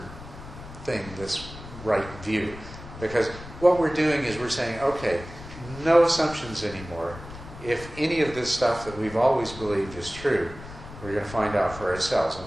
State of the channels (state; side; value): noise; left; rumble, 14 dB below the sound